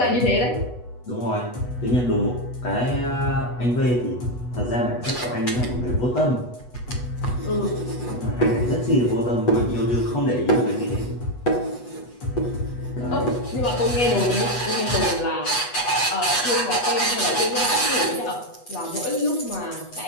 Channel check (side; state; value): right; late; 8.2 ms